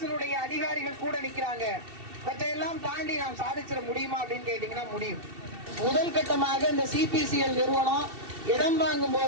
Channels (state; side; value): late; left; 2.7 ms